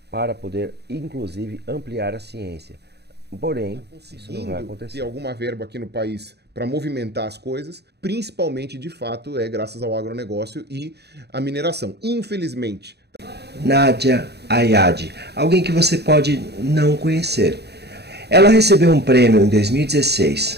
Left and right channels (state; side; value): late; left; 0.48 ms